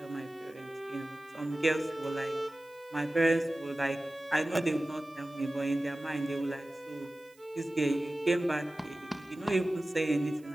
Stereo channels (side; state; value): right; noise; hiss, 29 dB below the sound